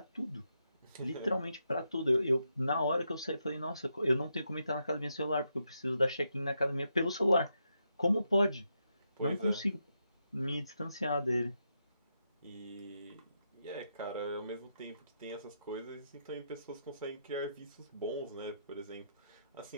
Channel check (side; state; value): both; inverted; correlation -0.83